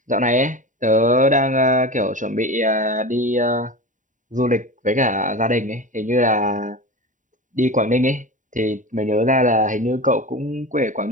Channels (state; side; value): late; left; 0.37 ms